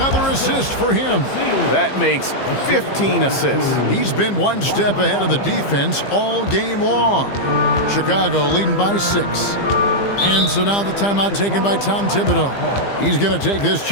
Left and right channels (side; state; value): right; late; 15 ms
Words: assist for him. That makes 15 assists. He's been one step ahead of the defense all game long. Chicago leading by 6. And so now the timeout taken by Tom Thibodeau. He's going to take this